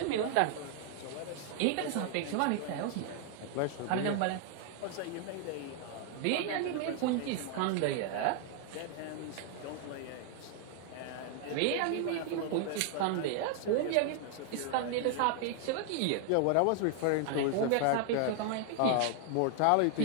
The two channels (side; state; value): both; different; correlation 0.00